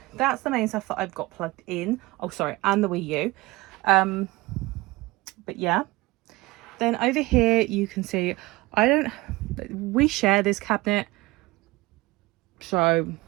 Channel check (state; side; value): quieter; left; 21.1 dB